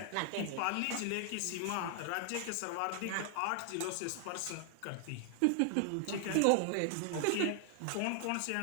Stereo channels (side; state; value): both; different; correlation 0.00